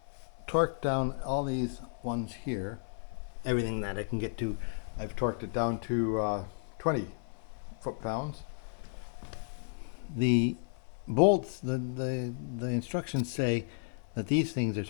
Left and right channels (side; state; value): right; silent; 56 dB below the other